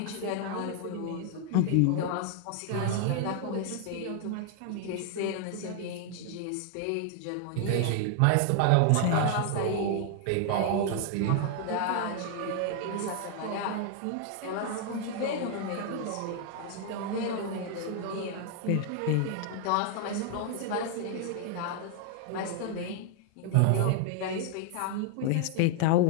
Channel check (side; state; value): both; different; correlation 0.00